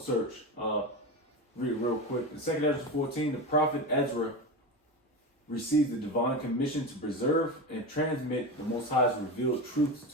search. Read it real quick. In Second Ezra 14, the prophet Ezra received the divine commission to preserve and transmit the Most High's revealed truths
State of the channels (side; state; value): both; normal; correlation 0.22